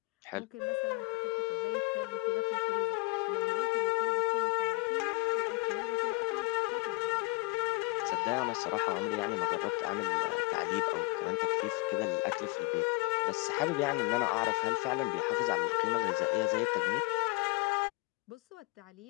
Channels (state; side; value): quieter; right; 27.9 dB